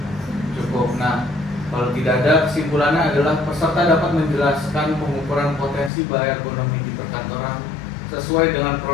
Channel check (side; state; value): right; drops out; at 5.9 s